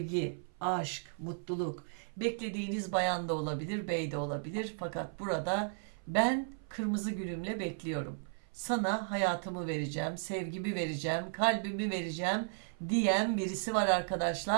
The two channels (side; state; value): left; silent; 55 dB below the other